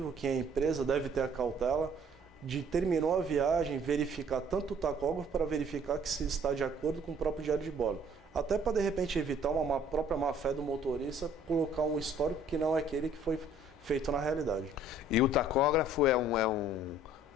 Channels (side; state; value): both; normal; correlation 0.57